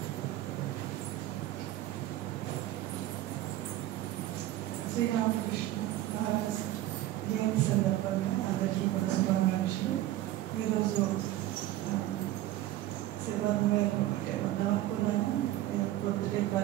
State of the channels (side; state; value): left; quieter; 14.6 dB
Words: శ్రీరామకృష్ణ మహారాజ్ జయంతి సందర్భంగా అందరికీ కూడా శుభాకాంక్షలు. ఈరోజు శివన్ గారు అంటే వద్దాం అనుకున్నాను, పొద్దుటే